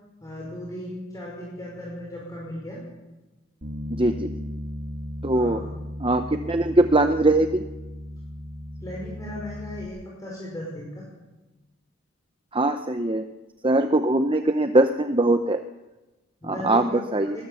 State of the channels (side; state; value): both; normal; correlation 0.57